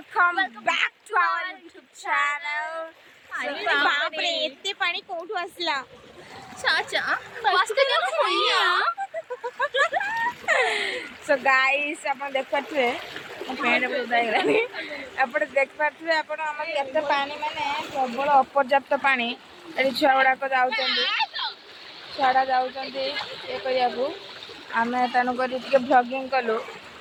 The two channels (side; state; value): both; identical; correlation 1.00